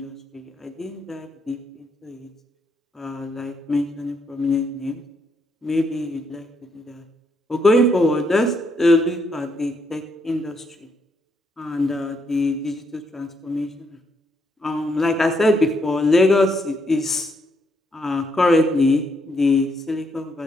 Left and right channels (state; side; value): normal; both; correlation 0.75